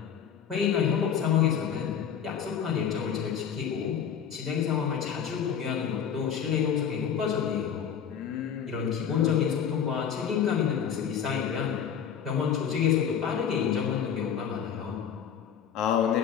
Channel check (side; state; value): right; quieter; 8.0 dB